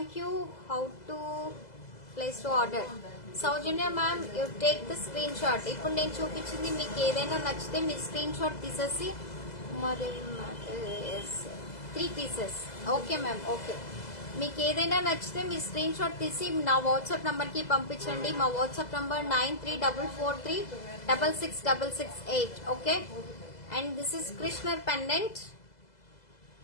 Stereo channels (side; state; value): right; late; 2.0 ms